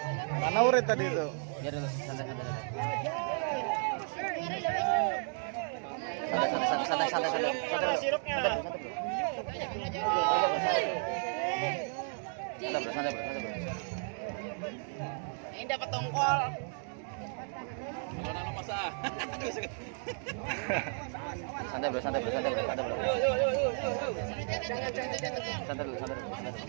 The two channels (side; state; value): left; silent; 55 dB below the other